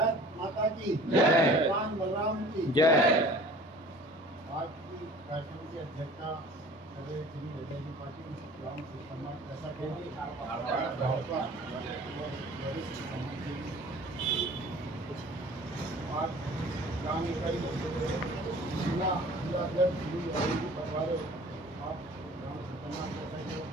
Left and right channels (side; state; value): both; normal; correlation 0.46